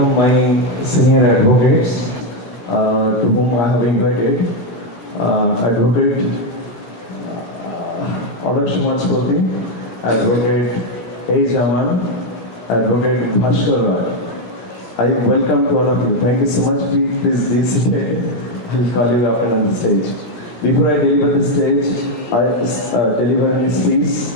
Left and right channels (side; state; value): right; late; 17 ms